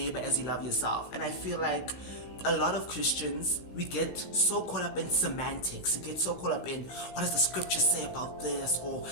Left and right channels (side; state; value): right; late; 16 ms